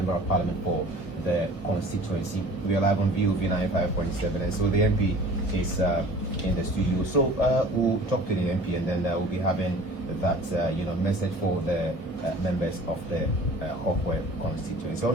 of Parliament for the constituency. We are live on VOV 95.7, and so the MP is in the studio. So we'll talk to the MP, and then we'll be having that message for the members of the Hohoe constituency. So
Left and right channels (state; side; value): late; right; 1.7 ms